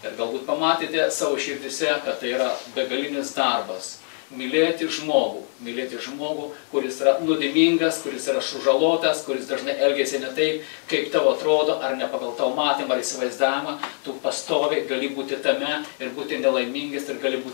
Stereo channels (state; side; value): silent; right; 57 dB below the other